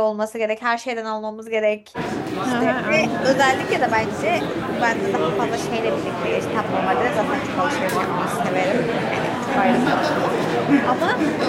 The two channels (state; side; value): identical; both; correlation 1.00